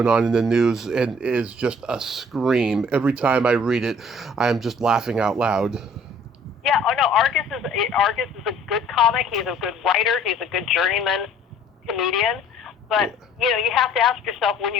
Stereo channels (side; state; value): both; normal; correlation 0.55